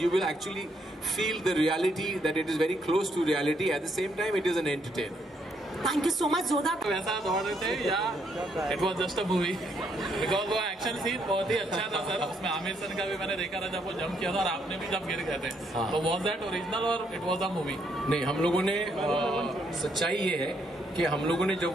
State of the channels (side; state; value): both; normal; correlation 0.73